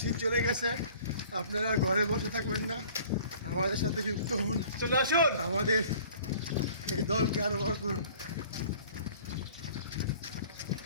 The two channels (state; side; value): inverted; both; correlation -0.50